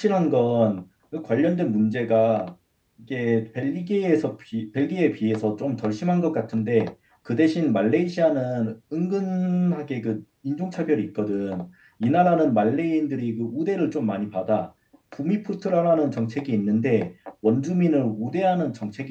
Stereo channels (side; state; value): both; identical; correlation 1.00